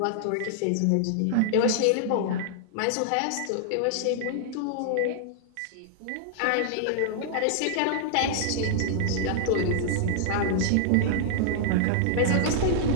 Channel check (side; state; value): both; different; correlation -0.01